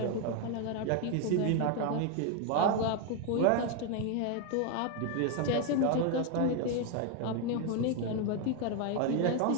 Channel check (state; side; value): different; both; correlation 0.01